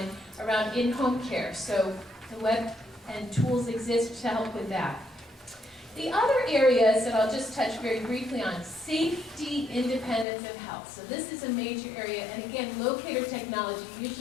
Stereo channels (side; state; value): right; drops out; at 10.2 s